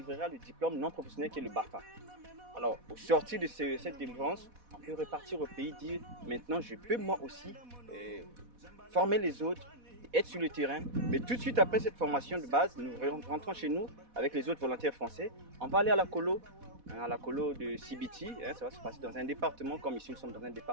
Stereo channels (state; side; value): late; left; 4.1 ms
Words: le diplôme non professionnel qui est le BAFA. Alors, au sortir de cette délivrance, on peut repartir au pays, dire maintenant je peux moi aussi former les autres, être sur le terrain. Mais tout de suite après cette formation de base, nous rentrons chez nous avec les autres volontaires français. On va aller à la colo de Sibiti. Ça va se passer dans un département, comme ici nous sommes dans un